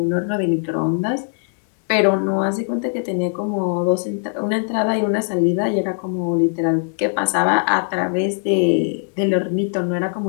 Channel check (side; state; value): right; silent; 56 dB below the other